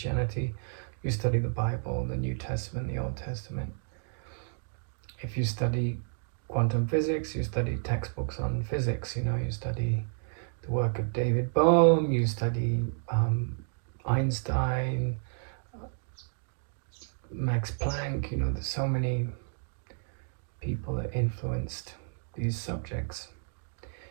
you study the Bible, the New Testament, the Old Testament. If you study quantum physics, you study textbooks on physics, you study the work of David Bohm, you study Einstein, Max Planck, there's so many people that influenced these subjects.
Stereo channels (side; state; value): left; silent; digital silence